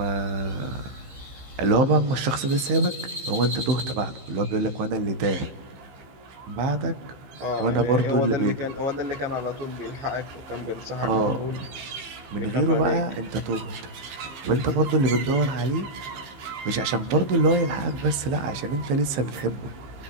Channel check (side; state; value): left; late; 15 ms